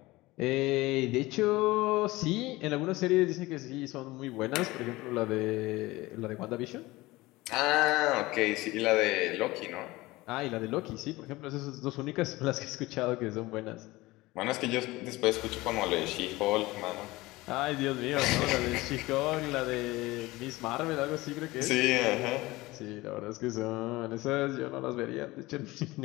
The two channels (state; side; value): quieter; right; 20.0 dB